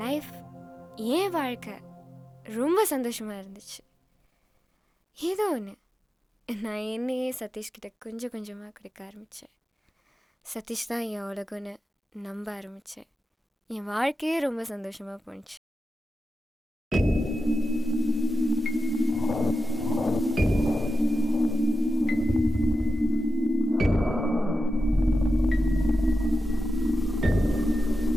லைஃப், என் வாழ்க்கை ரொம்ப சந்தோஷமாக இருந்துச்சு. ஏதோ ஒன்று நான் என்னையே சதீஷ்கிட்ட கொஞ்சம் கொஞ்சமாக கொடுக்க ஆரம்பித்தேன். சதீஷ் தான் என் உலகம்னு நம்ப ஆரம்பித்தேன். என் வாழ்க்கையே ரொம்ப சந்தோஷமாக போணுச்சு.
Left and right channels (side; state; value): both; normal; correlation 0.91